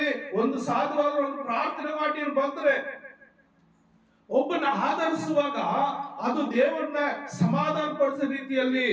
ಒಂದು ಸಾಧುವಾದ ಒಂದು ಪ್ರಾರ್ಥನೆ ಮಾಡಿ ಬಂದ್ರೆ ಒಬ್ಬನ ಆಧರಿಸುವಾಗ ಅದು ದೇವರನ್ನ ಸಮಾಧಾನ ಪಡಿಸೋ ರೀತಿಯಲ್ಲಿ,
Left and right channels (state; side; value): identical; both; correlation 1.00